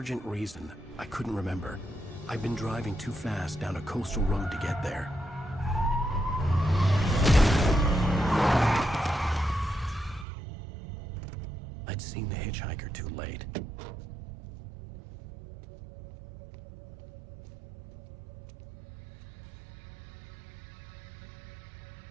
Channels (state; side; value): drops out; left; at 10.2 s